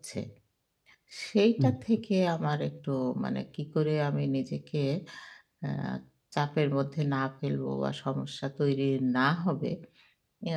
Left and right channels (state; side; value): identical; both; correlation 1.00